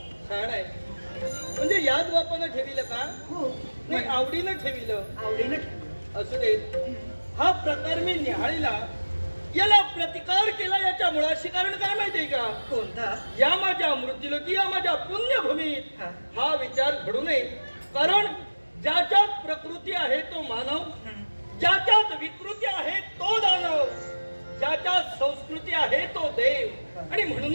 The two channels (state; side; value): inverted; both; correlation -1.00